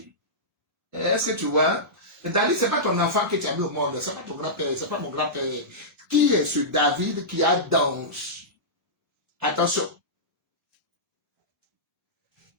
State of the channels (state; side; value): normal; both; correlation -0.15